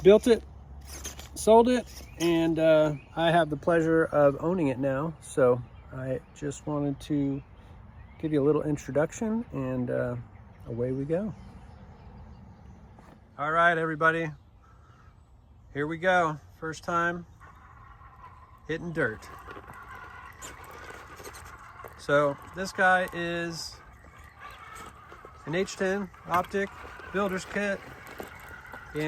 built it, sold it, and I have the pleasure of owning it now. So I just wanted to give you a little introduction, and away we go. All right, everybody, here we go. First time hitting dirt. So this guy is an H10 Optic builder's kit,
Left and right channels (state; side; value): identical; both; correlation 1.00